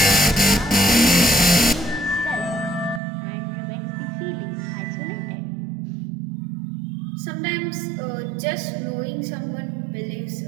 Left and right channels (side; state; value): left; drops out; at 3.0 s